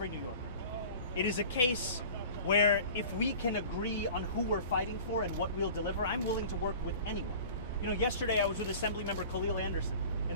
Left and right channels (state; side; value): inverted; both; correlation -0.41